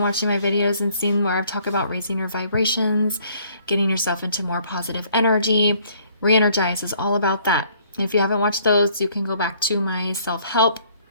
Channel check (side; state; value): both; inverted; correlation -0.61